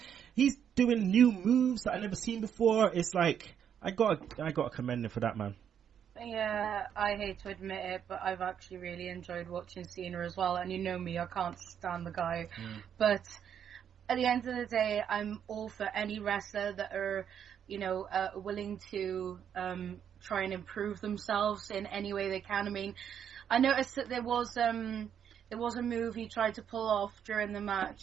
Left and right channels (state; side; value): quieter; left; 8.6 dB